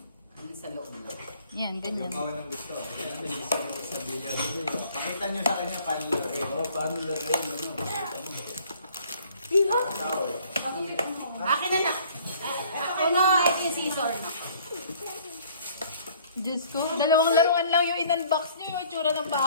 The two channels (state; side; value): inverted; both; correlation -0.56